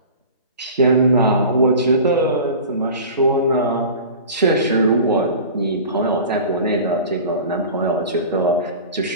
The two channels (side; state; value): both; inverted; correlation -0.37